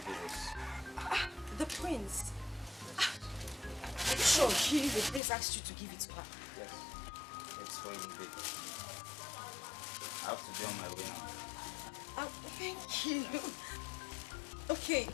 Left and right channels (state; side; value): drops out; right; at 5.2 s